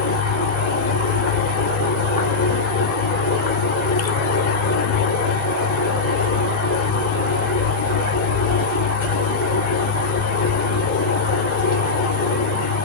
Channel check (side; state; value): right; quieter; 4.2 dB